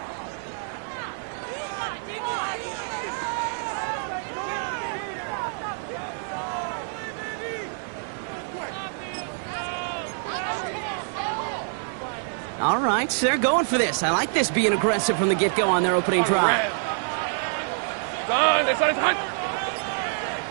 All right, they're going for this. I like this being aggressive from the get-go on their opening drive. Done.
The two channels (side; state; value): left; silent; 57 dB below the other